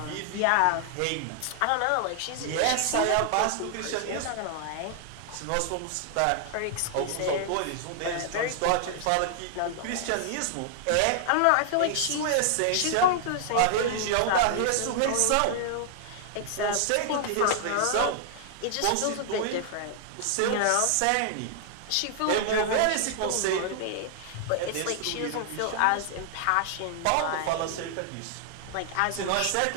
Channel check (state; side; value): different; both; correlation 0.00